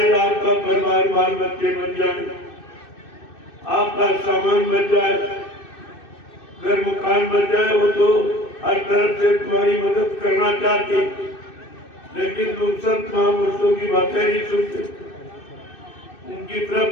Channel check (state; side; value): late; right; 2.6 ms